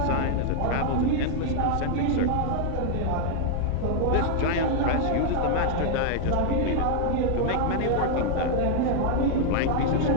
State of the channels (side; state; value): both; different; correlation 0.00